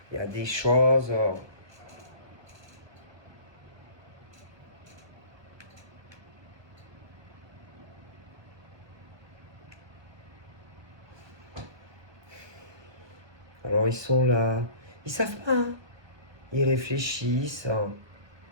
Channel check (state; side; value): late; left; 1.2 ms